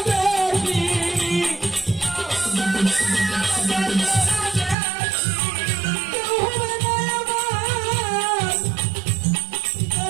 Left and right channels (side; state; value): left; drops out; at 4.8 s